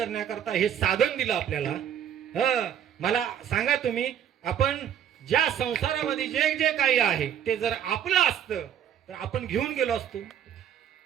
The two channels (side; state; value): left; quieter; 9.4 dB